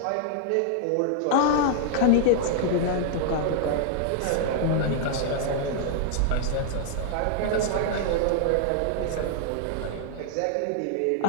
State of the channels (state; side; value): different; both; correlation 0.00